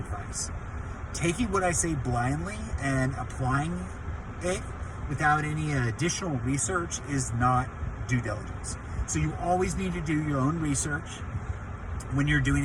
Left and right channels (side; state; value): both; identical; correlation 1.00